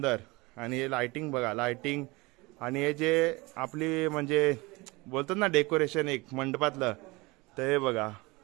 आणि हे लाइटिंग बघा, लाइटिंग आणि हे जे आपली म्हणजे बोलतात ना डेकोरेशन एक मंडपातलं, तर हे बघा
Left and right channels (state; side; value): quieter; left; 24.0 dB